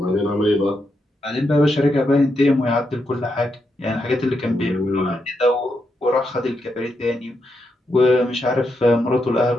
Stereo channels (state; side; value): normal; both; correlation 0.83